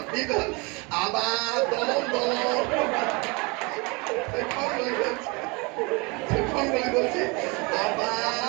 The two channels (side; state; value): left; quieter; 28.2 dB